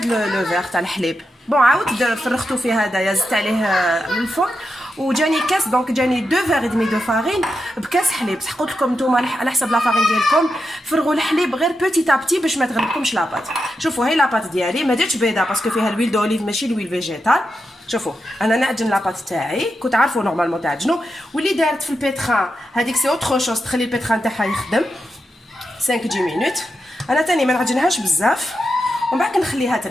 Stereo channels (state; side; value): normal; both; correlation 0.87